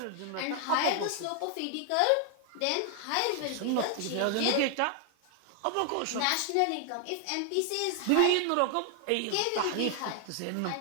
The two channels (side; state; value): both; different; correlation 0.00